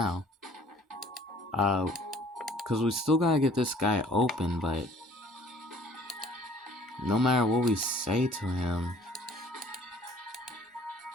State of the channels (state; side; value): normal; both; correlation 0.54